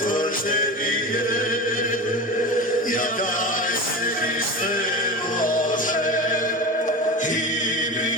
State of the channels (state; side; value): normal; both; correlation 0.27